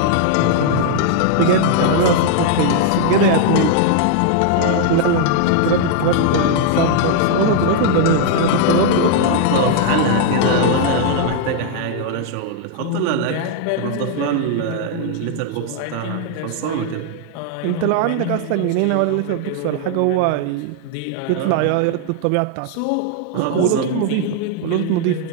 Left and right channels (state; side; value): different; both; correlation 0.00